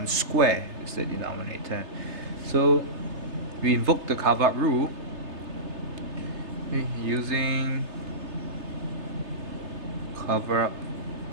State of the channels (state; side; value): late; left; 3.3 ms